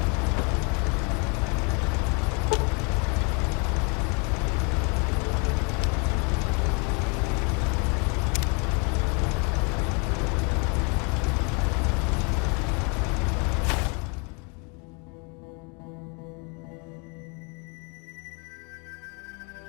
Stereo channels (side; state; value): right; quieter; 33.9 dB